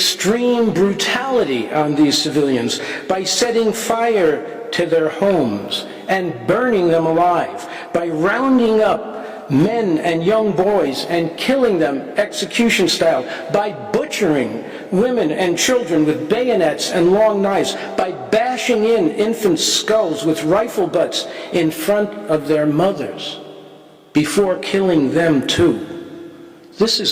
brutality on these civilians by setting fire to their homes and burning them alive, by rounding up men and young boys and killing them execution style, by butchering women and children with bayonets and long knives, by bashing in infants' skulls with rifle butts in front of their mothers before killing them too. This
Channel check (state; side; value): identical; both; correlation 1.00